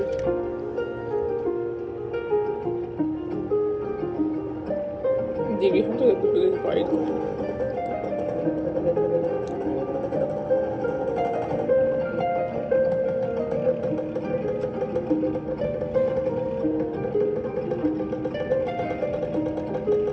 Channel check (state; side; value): identical; both; correlation 1.00